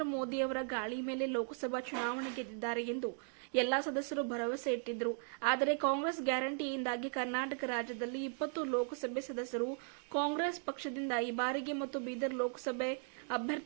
ಮೋದಿ ಅವರ ಗಾಳಿ ಮೇಲೆ ಲೋಕಸಭಾ ಚುನಾವಣೆ ಗೆದ್ದಿದ್ದಾರೆ ಎಂದು ಎಲ್ಲಾ ಸದಸ್ಯರು ಭರವಸೆ ಇಟ್ಟಿದ್ದರು. ಆದರೆ ಕಾಂಗ್ರೆಸ್ ಗ್ಯಾರಂಟಿಯಿಂದಾಗಿ ಕರ್ನಾಟಕ ರಾಜ್ಯದಲ್ಲಿ 20 ಲೋಕಸಭೆ ಸದಸ್ಯರು ಕಾಂಗ್ರೆಸ್ ಪಕ್ಷದಿಂದ ಈ ಬಾರಿಗೆ ಮತ್ತು ಬೀದರ್ ಲೋಕಸಭೆ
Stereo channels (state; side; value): silent; left; 53 dB below the other